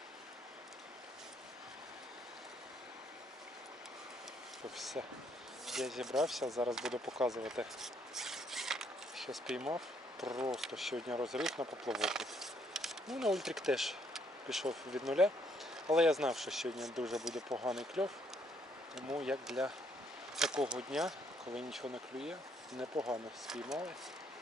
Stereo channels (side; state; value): both; normal; correlation 0.69